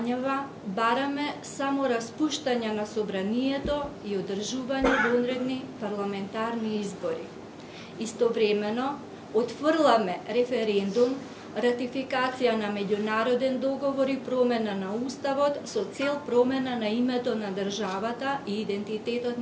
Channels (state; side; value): identical; both; correlation 1.00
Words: бараме само распуштање на собранието и одржување вонредни парламентарни избори. Истовремено, отфрламе референдум, ратификација на меѓународен договор и промена на Уставот со цел промена на името на државата и идентитетот